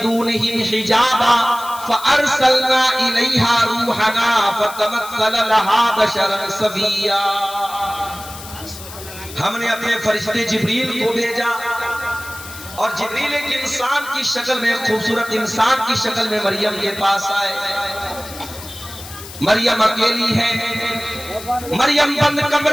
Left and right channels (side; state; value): left; noise; hiss, 14 dB below the sound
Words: हिजाबा फअरसलना इलैहा रूहना फतमस्सल लहा बशरन सविया। हमने अपने फरिश्ते जिब्रील को भेजा और जिब्रील एक इंसान की शक्ल में, खूबसूरत इंसान की शक्ल में मरियम के पास आए। मरियम अकेली है, मरियम बंद